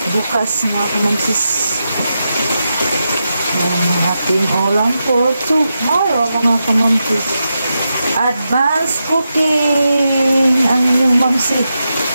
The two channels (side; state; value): both; inverted; correlation -0.88